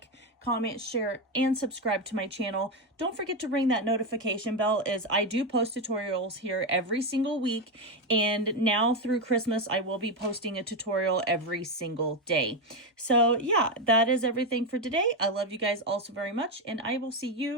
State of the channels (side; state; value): both; normal; correlation 0.09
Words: comment, share, and subscribe to my channel. Don't forget to ring that notification bell, as I do post tutorials here every single week. And now through Christmas, I will be posting a tutorial every single day. So yeah, that is everything for today. I love you guys all so very much, and I will see